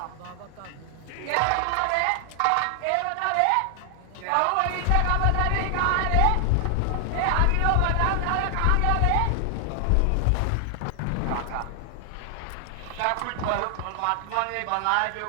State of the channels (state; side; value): different; both; correlation 0.00